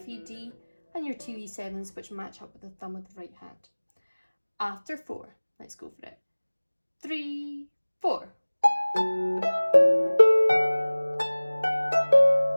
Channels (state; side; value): inverted; both; correlation -1.00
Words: E, D, and your 2 E7s which match up with the thumb of the right hand. After 4, let's go for it. 3, 4.